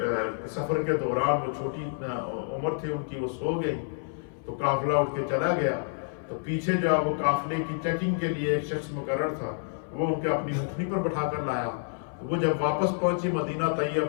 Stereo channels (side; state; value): right; silent; 59 dB below the other